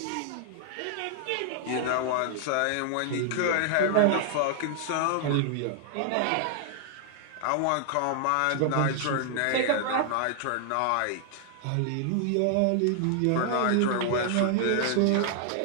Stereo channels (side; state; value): both; different; correlation -0.01